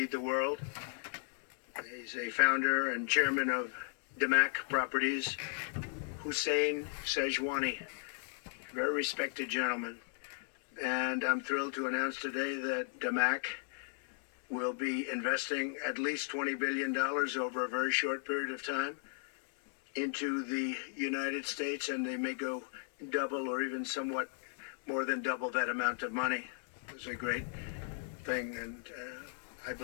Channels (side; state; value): right; silent; 54 dB below the other